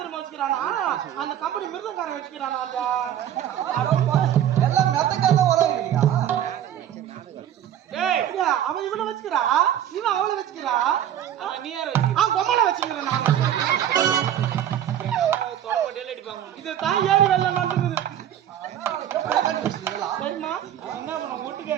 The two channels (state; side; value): quieter; left; 10.6 dB